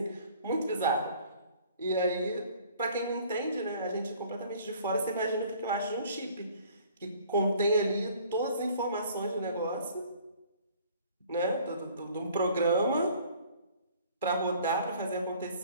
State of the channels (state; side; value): inverted; both; correlation -0.54